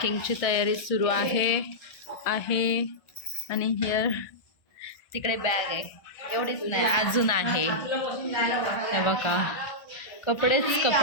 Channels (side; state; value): right; late; 1.5 ms